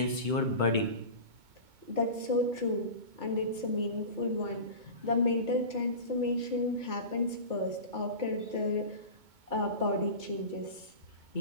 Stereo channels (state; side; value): late; left; 2.2 ms